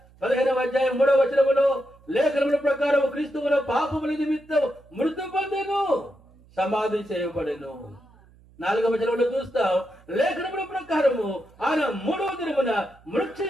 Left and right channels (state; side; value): noise; right; hum, 27 dB below the sound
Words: 15వ అధ్యాయం 3వ వచనములో లేఖనముల ప్రకారం క్రీస్తువుల పాపముల నిమిత్తం మృతి పొందెను, సమాధి చేయబడెను. 4వ వచనంలో చూస్తాం, లేఖనముల ప్రకారము ఆయన 3వ దినమున